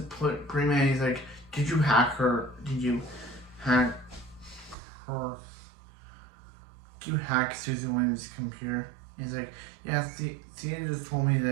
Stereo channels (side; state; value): left; drops out; at 4.8 s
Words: pretty mad. He's like, "Did you hack her? Did you hack her? Did you hack Susan Williams' computer?" He's like, "Yeah, Thea just told me